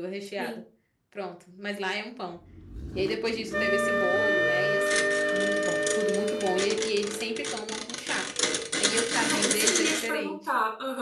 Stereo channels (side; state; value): both; identical; correlation 1.00